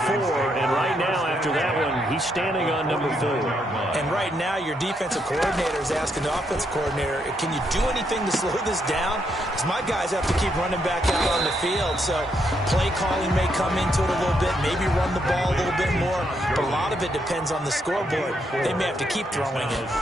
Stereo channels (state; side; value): normal; both; correlation 0.77